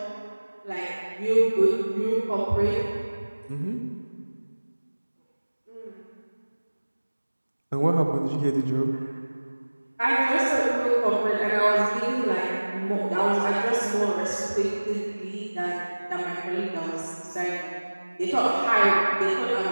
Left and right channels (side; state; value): both; inverted; correlation -1.00